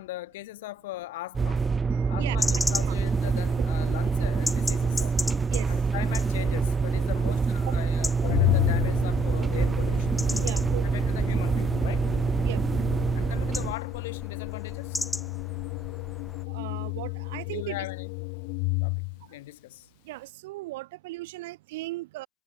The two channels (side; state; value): both; normal; correlation 0.68